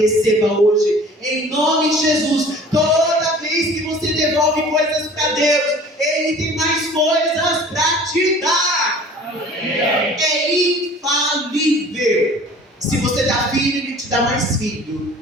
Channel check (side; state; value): both; normal; correlation 0.47